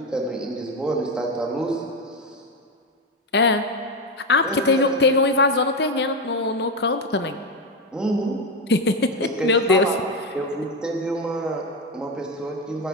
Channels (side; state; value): both; normal; correlation 0.11